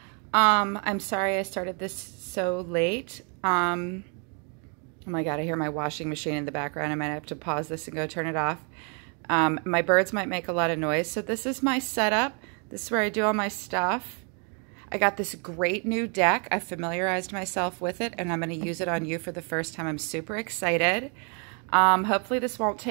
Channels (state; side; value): quieter; left; 38.0 dB